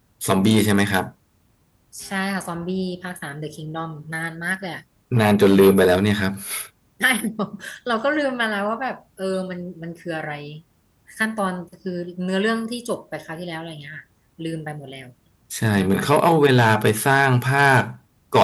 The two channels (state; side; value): identical; both; correlation 1.00